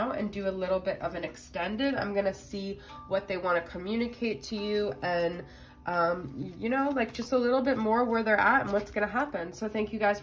and do a little bit of an extended. I'm going to see what they want to communicate to you and, you know, like just a little bit more where they're at and what's going to happen. So thank you guys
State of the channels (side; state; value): both; identical; correlation 1.00